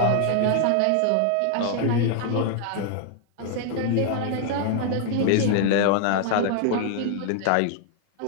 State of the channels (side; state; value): both; different; correlation 0.00